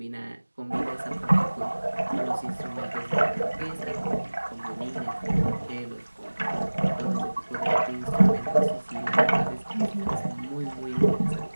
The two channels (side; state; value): both; inverted; correlation -1.00